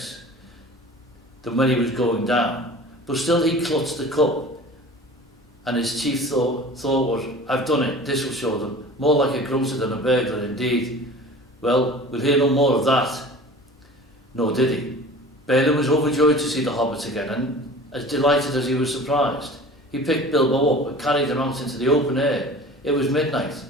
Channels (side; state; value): both; normal; correlation 0.41